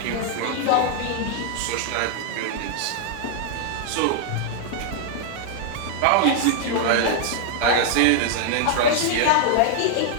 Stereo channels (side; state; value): both; different; correlation 0.00